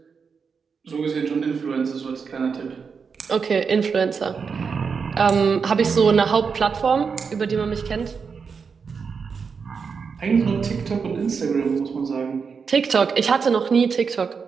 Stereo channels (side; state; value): left; quieter; 5.7 dB